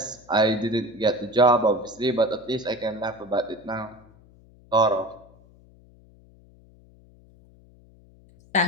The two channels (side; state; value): left; noise; hum, 27 dB below the sound